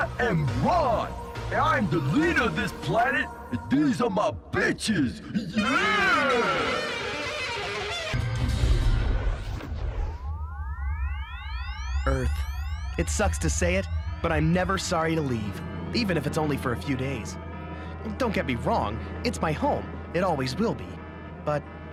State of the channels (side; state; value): both; identical; correlation 1.00